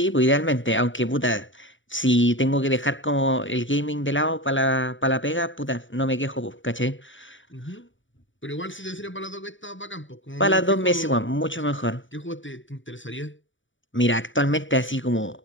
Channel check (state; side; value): late; right; 0.56 ms